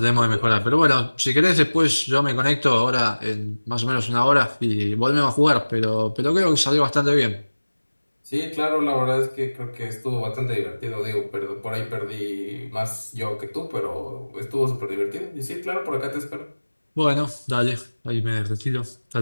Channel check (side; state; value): both; inverted; correlation -1.00